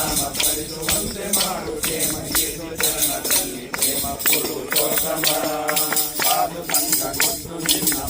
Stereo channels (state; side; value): identical; both; correlation 1.00